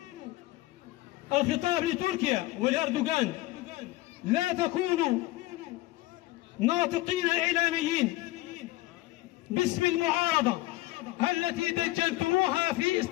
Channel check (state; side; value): quieter; right; 18.7 dB